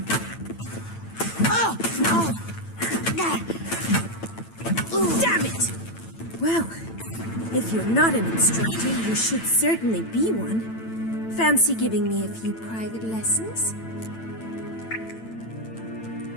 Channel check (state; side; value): late; right; 9.0 ms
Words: Damn it! Well, if you're not an instructor, you should certainly be one. Fancy giving me a few private lessons?